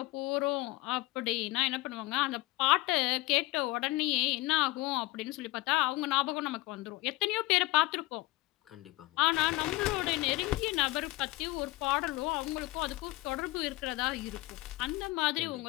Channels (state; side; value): quieter; right; 20.1 dB